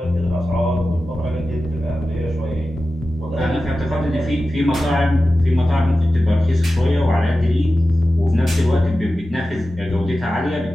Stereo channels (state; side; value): normal; both; correlation 0.94